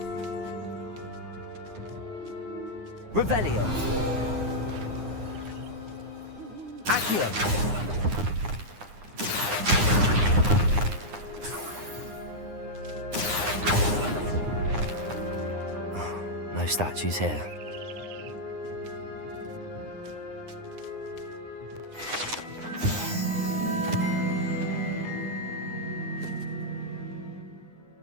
Revelio. Accio. No statues here.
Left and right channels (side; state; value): left; late; 9.7 ms